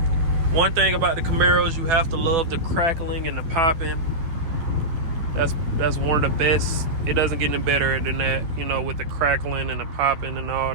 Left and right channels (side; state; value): left; late; 12 ms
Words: One thing about the Camaros, you have to love the crackling and the popping. That's one of the best. It doesn't get any better than that, you know, with the crackling and the popping and all